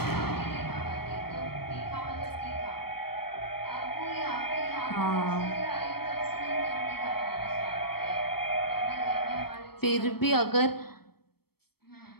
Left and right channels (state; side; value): late; right; 0.96 ms